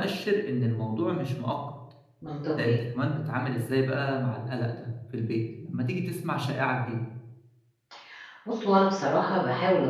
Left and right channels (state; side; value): identical; both; correlation 1.00